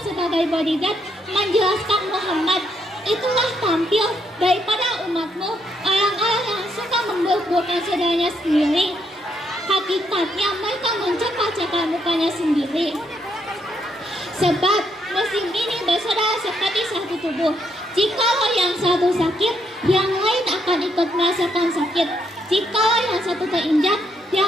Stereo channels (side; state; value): both; normal; correlation 0.76